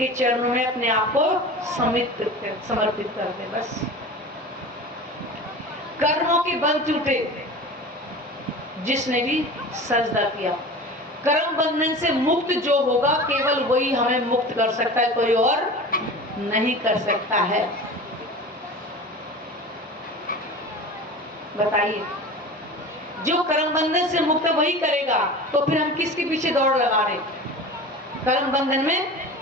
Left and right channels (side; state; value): both; normal; correlation 0.35